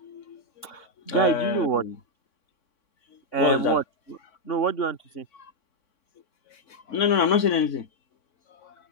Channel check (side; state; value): right; late; 3.6 ms